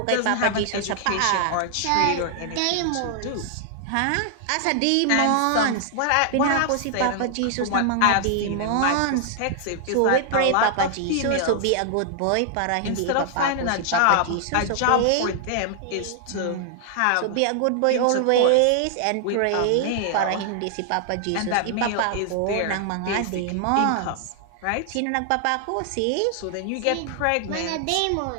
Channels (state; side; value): different; both; correlation 0.00